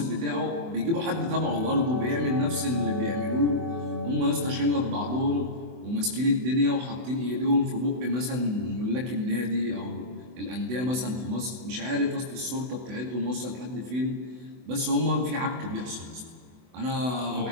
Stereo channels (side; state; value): left; late; 24 ms